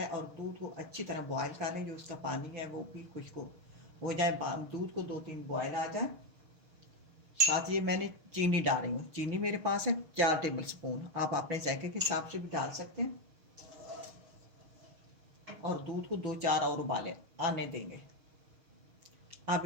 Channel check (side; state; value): left; late; 6.5 ms